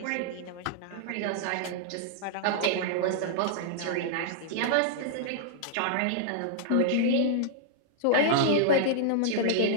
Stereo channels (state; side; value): different; both; correlation -0.01